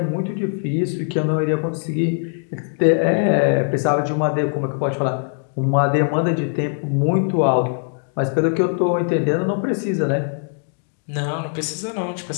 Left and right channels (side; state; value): right; silent; 55 dB below the other